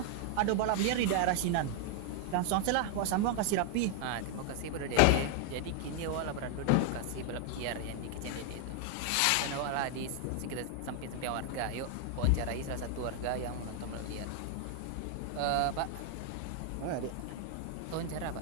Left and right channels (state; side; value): different; both; correlation 0.00